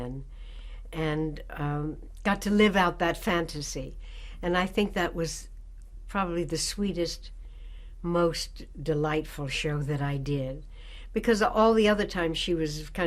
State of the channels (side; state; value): both; identical; correlation 1.00